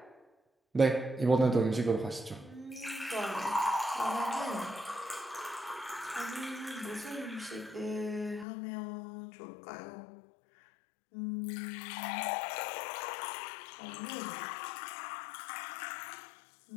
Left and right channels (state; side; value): drops out; right; at 8.5 s